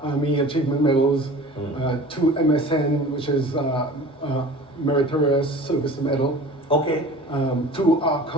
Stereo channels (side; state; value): both; normal; correlation 0.41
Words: Army Achievement Medals, 2 MSN, which is Meritorious Service Medal. Okay. 2